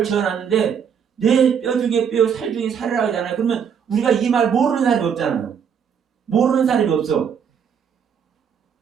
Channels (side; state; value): left; quieter; 7.4 dB